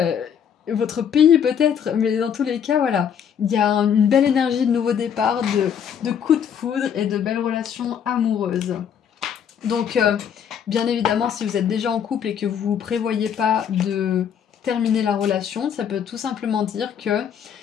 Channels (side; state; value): right; quieter; 8.2 dB